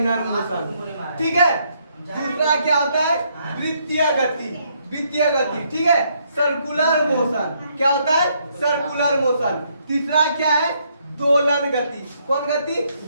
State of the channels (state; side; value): inverted; both; correlation -0.72